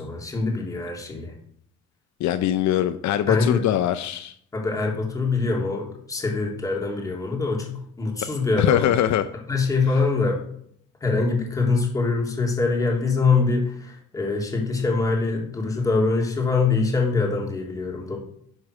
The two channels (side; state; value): right; quieter; 4.8 dB